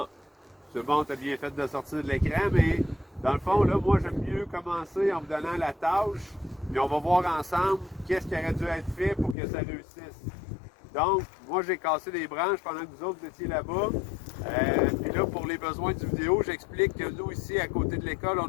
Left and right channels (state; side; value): drops out; right; at 9.3 s